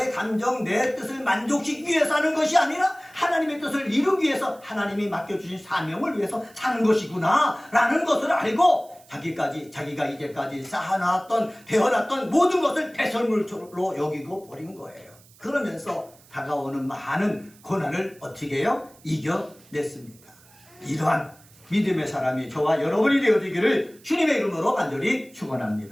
감정, 내 뜻을 만족시키기 위해서 하는 것이 아니라 하나님의 뜻을 이루기 위해서 하나님이 맡겨주신 사명을 위해서 사는 것이구나 라는 것을 알고 자기가 이제까지 쌓아놨던, 배워놨던 모든 것을 배설물로 여기고 버린 거예요. 그러면서 다가오는 많은 고난을 어떻게 해요? 이겨냈습니다. 이러한 믿음의 사람이 저와 여러분이 되어지기를 주님의 이름으로 간절히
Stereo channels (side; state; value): right; noise; hiss, 26 dB below the sound